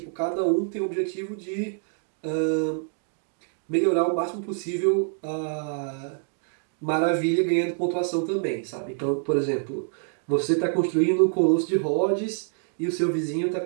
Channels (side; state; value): left; silent; 61 dB below the other